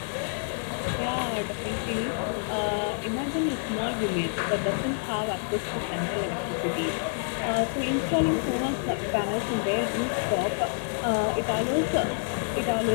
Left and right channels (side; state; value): right; silent; 60 dB below the other